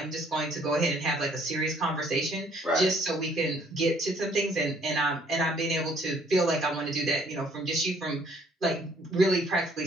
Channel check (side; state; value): both; normal; correlation 0.62